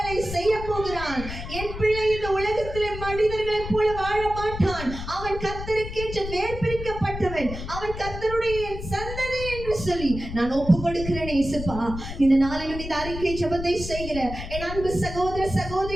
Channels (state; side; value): noise; left; rumble, 8 dB below the sound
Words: செய்ய போகிறான். என் பிள்ளை இந்த உலகத்திலே மனிதர்களைப் போல வாழ மாட்டான். அவன் கர்த்தருக்கென்று நேர்பிரிக்கப்பட்டவன். அவன் கர்த்தருடைய சந்ததி என்று சொல்லி நான் ஒப்பு கொடுக்கிறேன். இயேசுப்பா, இந்த நாளிலும் இந்த அறிக்கை ஜெபத்தை செய்கிற என் அன்பு சகோதர